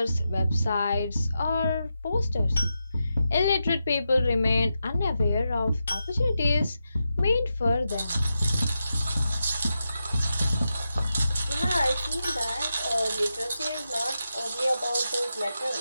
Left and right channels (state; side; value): inverted; both; correlation -0.88